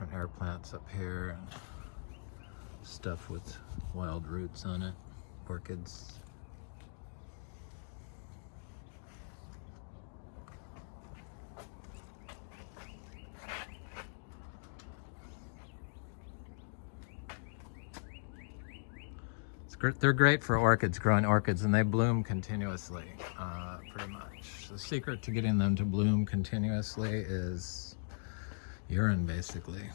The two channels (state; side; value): silent; right; digital silence